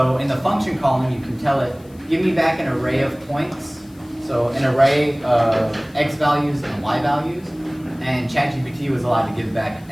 in the function column, you can tell it, give me back an array of points. So an array of x values and y values. And ChatGPT was allowed to give back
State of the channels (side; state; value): left; noise; hiss, 28 dB below the sound